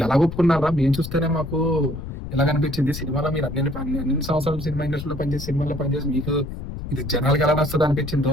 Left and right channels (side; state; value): left; noise; rumble, 9 dB below the sound